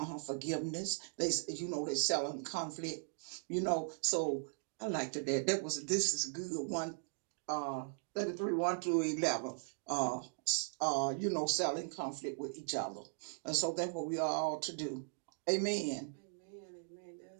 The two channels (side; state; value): left; silent; digital silence